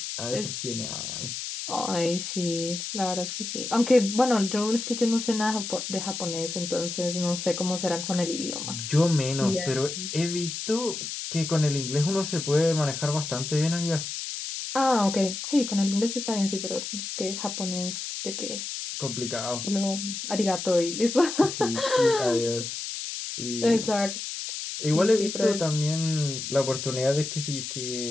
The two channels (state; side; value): noise; left; hiss, 6 dB below the sound